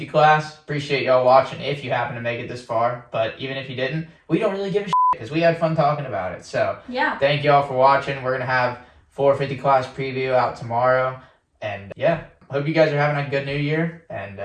class. Appreciate y'all watching if you happen to make it this far. But even if you didn't, we don't really give a shit, because we had fun talking about it. So, yeah. Thank y'all for watching. We're going to have 450 class preview out tomorrow. And, yeah. Hope you guys are having a good new year, and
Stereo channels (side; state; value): both; identical; correlation 1.00